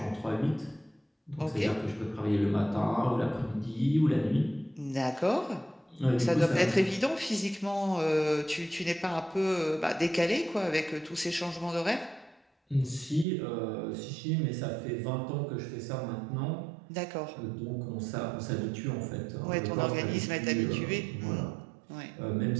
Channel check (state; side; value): drops out; left; at 13.2 s